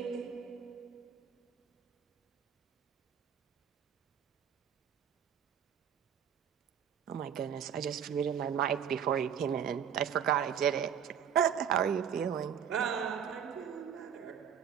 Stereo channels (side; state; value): left; quieter; 8.3 dB